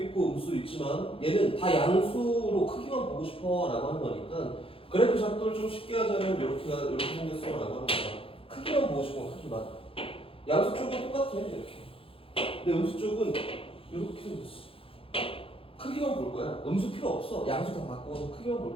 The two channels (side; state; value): right; late; 0.27 ms